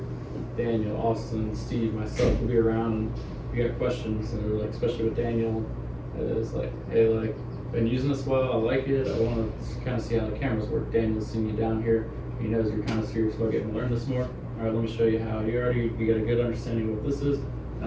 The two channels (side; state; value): both; identical; correlation 1.00